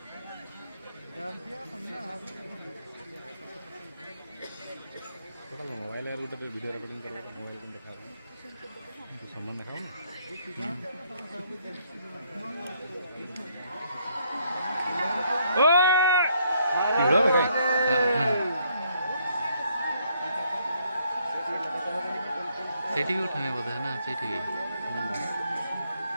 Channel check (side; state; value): both; inverted; correlation -0.69